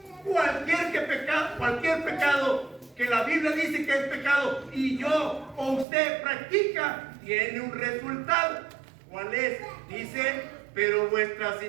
cualquier pecado que la Biblia dice que es pecado y yo o usted practica, tiene un resultado. ¿Cuál es? Dice, pero vuestras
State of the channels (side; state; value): left; drops out; at 5.9 s